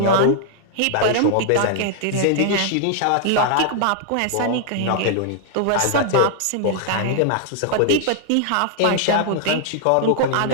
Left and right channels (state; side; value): different; both; correlation -0.01